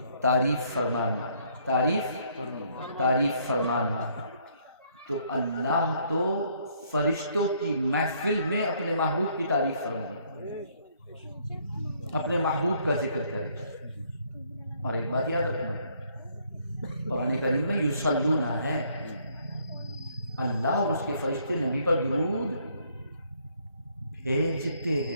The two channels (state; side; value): inverted; both; correlation -0.67